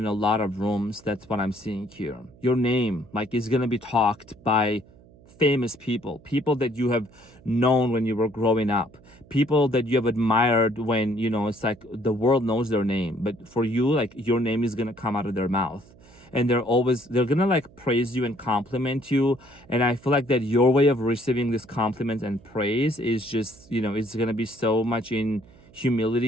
a lot of rooms. That's what I'm seeing here. Your name like is gonna be talked by famous people that you have known when you were growing up, people that you have admired when it's like the world knows their name, but for you, like your name is gonna come out of their mouth, and they're gonna like praise you and compliment you. And I feel like that your way of receiving this compliment and praise is just it's gonna be so much in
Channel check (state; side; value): noise; right; hum, 25 dB below the sound